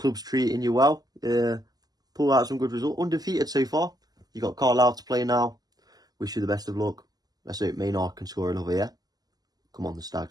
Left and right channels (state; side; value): late; left; 0.19 ms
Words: treating you well. Pull out some good result. Undefeated so far. You got Carlisle to play now. Wish you the best of luck. Let's hope Maynard can score another, yeah? Come on, the